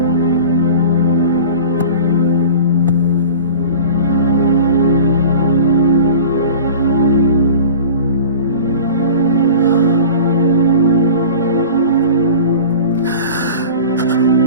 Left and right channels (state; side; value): inverted; both; correlation -0.39